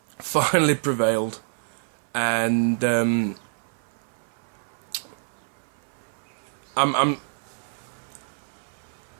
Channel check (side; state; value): left; silent; 57 dB below the other